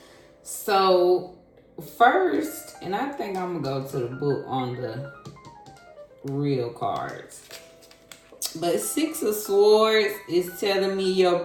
So, first, and I think I'm going to go to the book on the real cards. But Six of Swords is telling me your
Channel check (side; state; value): both; identical; correlation 1.00